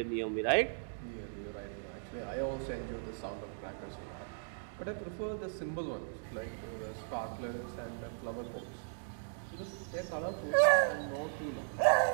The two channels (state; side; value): silent; left; digital silence